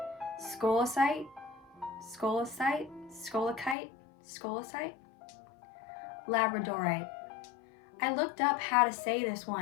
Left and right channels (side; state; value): right; drops out; at 3.8 s